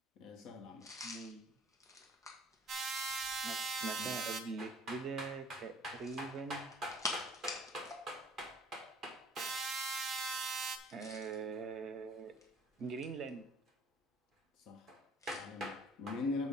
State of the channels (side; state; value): both; normal; correlation 0.53